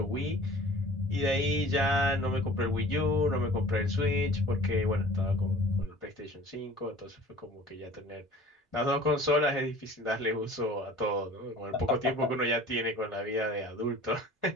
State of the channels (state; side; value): normal; both; correlation 0.46